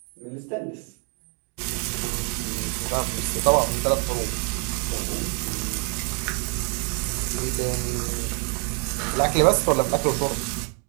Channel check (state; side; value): quieter; left; 36.7 dB